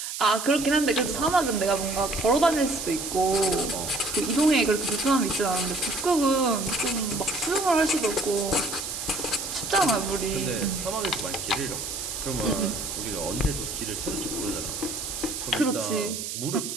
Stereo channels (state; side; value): noise; right; hiss, 6 dB below the sound